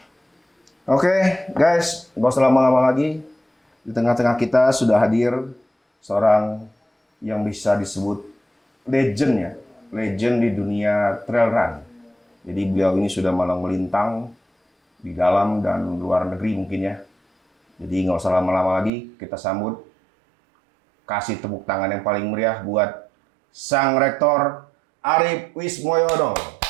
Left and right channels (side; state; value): left; drops out; at 18.9 s